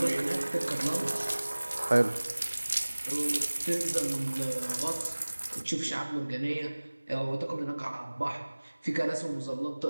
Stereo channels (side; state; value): both; inverted; correlation -1.00